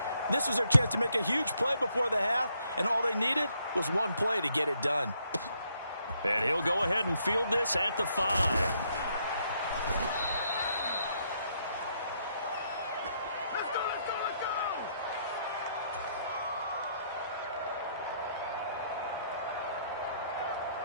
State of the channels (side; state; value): both; inverted; correlation -0.73